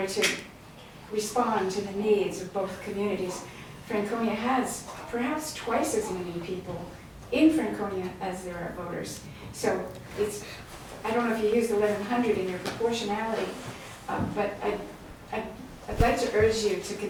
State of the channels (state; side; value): identical; both; correlation 1.00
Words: to respond to the needs of both communities? Franconia has perhaps twice as many people in Franconia as there are voters. So it's, I don't know if you used 1,100 in your proportionality, but I'd like to urge you to